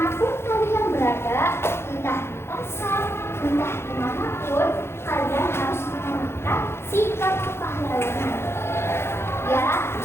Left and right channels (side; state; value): right; late; 0.12 ms